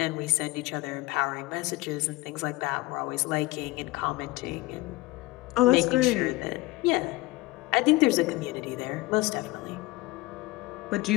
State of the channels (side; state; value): right; quieter; 20.9 dB